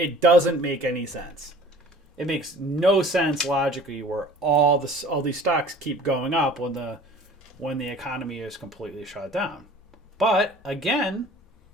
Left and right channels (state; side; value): normal; both; correlation 0.47